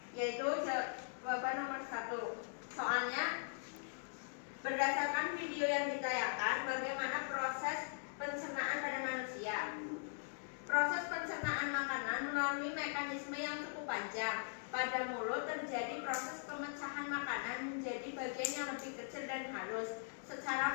yaitu jawaban nomor 1. Soalnya, berdasarkan video yang ditayangkan, bagaimana proses pencernaan pada manusia. Proses pencernaan makanan melalui mekanisme yang cukup panjang. Pada mulut terjadi proses pemecahan makanan menjadi bagian yang lebih kecil dan halus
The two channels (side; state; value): right; silent; digital silence